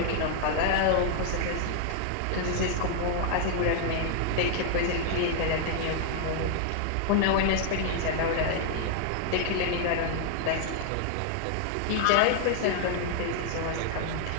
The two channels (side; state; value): both; different; correlation 0.00